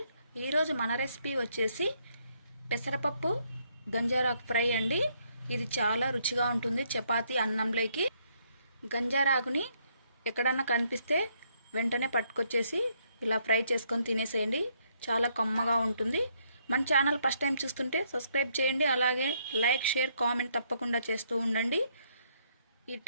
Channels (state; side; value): inverted; both; correlation -0.71